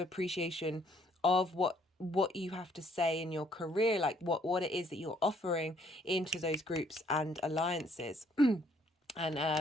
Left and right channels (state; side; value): normal; both; correlation 0.65